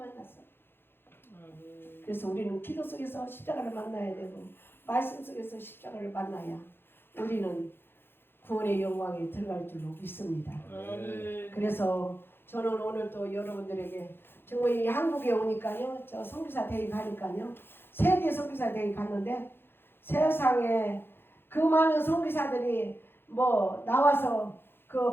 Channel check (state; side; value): late; right; 0.10 ms